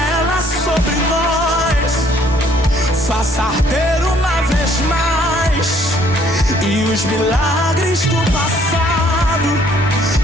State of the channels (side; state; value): both; normal; correlation 0.63